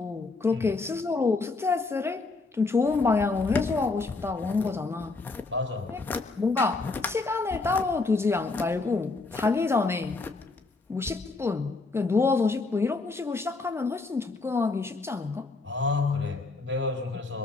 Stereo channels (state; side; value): quieter; right; 3.8 dB